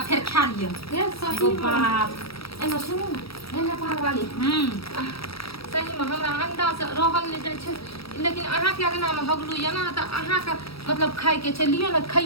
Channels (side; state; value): right; late; 0.76 ms